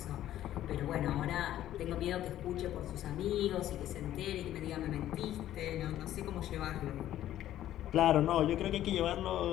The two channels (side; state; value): right; quieter; 12.7 dB